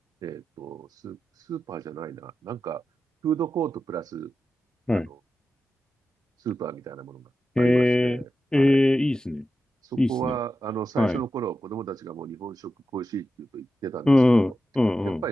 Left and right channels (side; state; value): both; normal; correlation 0.91